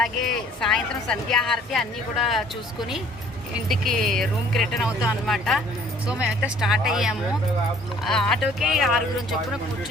సాయంత్రం సంధ్యాహారతి అన్నీ కూడా చూసుకుని ఇంటికి రూమ్కి రిటర్న్ అవుతాం అనమాట. సో మేమైతే స్టార్ట్ అయ్యాము. ఆటోకి 6 చొప్పున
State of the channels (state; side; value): normal; both; correlation 0.56